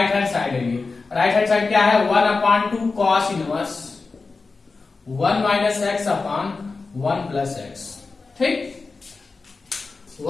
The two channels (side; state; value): right; quieter; 4.1 dB